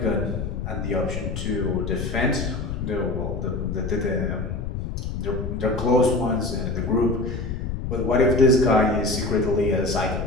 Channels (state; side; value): noise; left; rumble, 4 dB below the sound